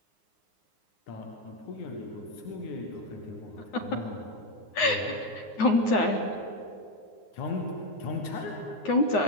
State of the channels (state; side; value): late; right; 9.6 ms